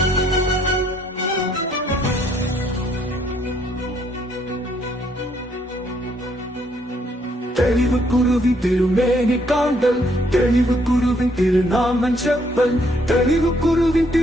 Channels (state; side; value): normal; both; correlation 0.69